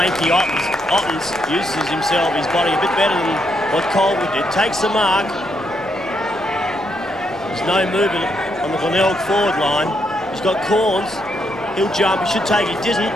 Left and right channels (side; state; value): both; normal; correlation 0.77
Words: Ottens uses himself, his body a bit better than what Colville did. Takes the mark. There's no movement on the Glenelg forward line. He's got Corns. He'll jump. He should take it. Didn't.